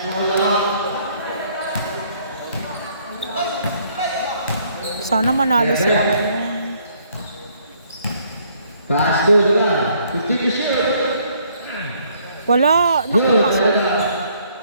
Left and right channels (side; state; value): both; inverted; correlation -0.65